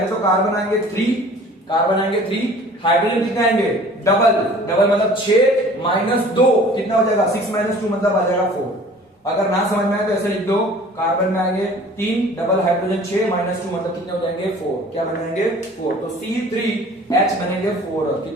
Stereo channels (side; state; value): both; normal; correlation 0.48